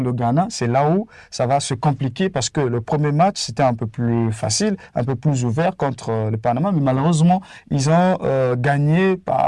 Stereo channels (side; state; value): both; identical; correlation 1.00